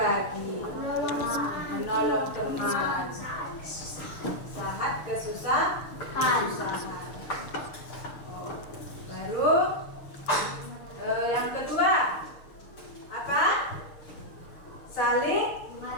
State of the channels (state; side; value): late; right; 6.6 ms